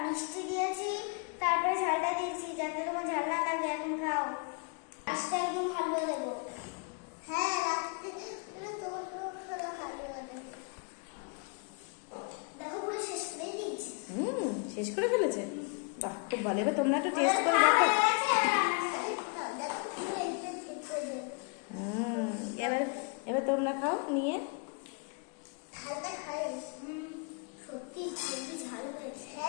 মিষ্টি দিয়েছি তারপরে ঝালটা দিয়েছি, যাতে তোমার ঝাল না লাগে। এখন খাও, আজকে একদম হালুয়া দেবো। হ্যাঁ রাখতে তোমার হালুয়া দেবো। দেখো পুরো শেষ করে দিয়েছি। শেষ করে ফেলেছে, বাহ খুব ভালো। এবার তোমরা একটু টেস্ট করে দেখো। এবার এবার তোমরা খাও নিয়ে। ঝালটা খাই, সত্যি খুবই ঝাল হয়েছে।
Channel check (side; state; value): right; quieter; 35.4 dB